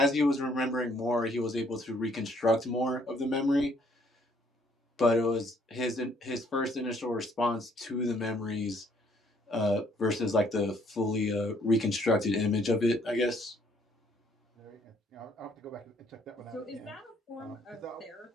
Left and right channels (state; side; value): normal; both; correlation 0.65